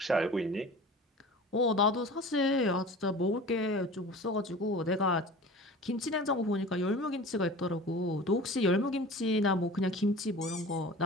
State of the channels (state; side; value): normal; both; correlation 0.39